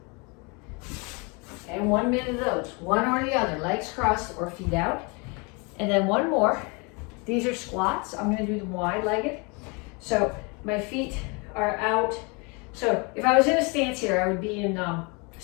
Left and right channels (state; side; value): quieter; right; 30.8 dB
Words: And 1 minute of those, one or the other, legs crossed or feet out. And then one more. These are squats. I'm gonna do them wide-legged. So my feet are out. So if I was in a stance here, I would be in